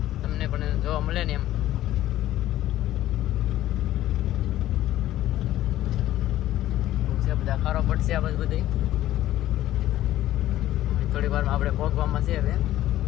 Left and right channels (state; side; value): quieter; right; 13.9 dB